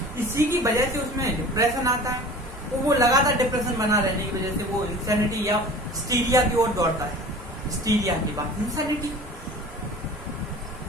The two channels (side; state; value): both; normal; correlation 0.41